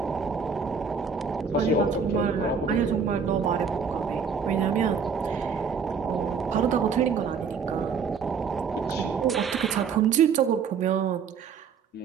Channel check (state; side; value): quieter; left; 6.0 dB